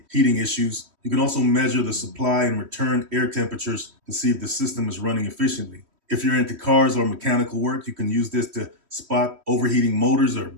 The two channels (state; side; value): late; left; 3.1 ms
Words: heating issues. You can also measure the supply and return air temperatures to see if the system is running efficiently. If you're into cars or mechanical work, you can use this to spot overheating motors or